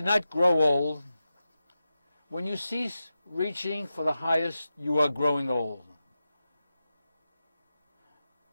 not grow old. When you cease reaching for the highest, you are growing old.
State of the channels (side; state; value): both; inverted; correlation -0.91